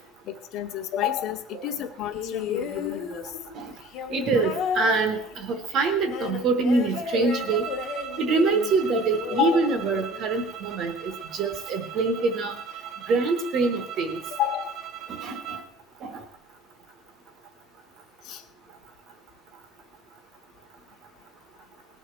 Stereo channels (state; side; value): normal; both; correlation 0.45